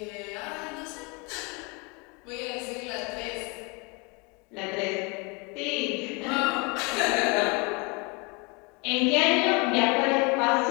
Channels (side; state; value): right; quieter; 29.7 dB